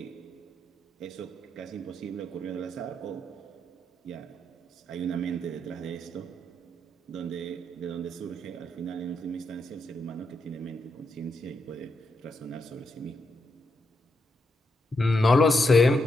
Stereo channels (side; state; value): both; normal; correlation 0.82